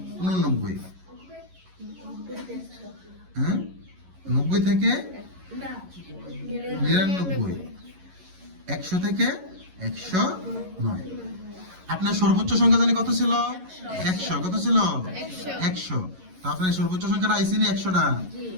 89, হ্যাঁ 90 থেকে 99, 100 থেকে 109। আপনার সর্বোচ্চ সংখ্যা জানি কত ছিল? 100। কত ছিল? 100। তো আপনার সর্বোচ্চ সংখ্যাটা আইসি নি 100টা?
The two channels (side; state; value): left; late; 11 ms